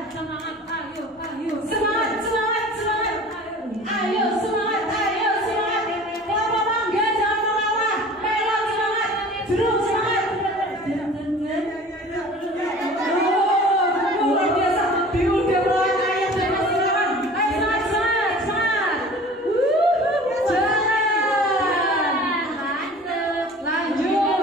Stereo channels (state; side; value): normal; both; correlation 0.43